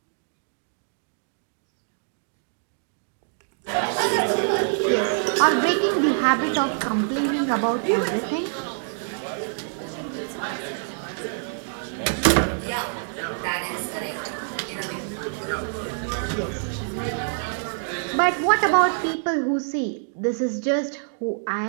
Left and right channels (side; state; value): left; silent; digital silence